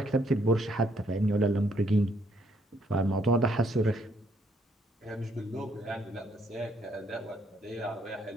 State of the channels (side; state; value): both; normal; correlation 0.70